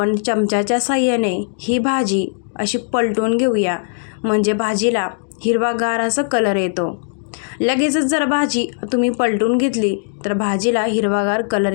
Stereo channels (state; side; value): silent; right; digital silence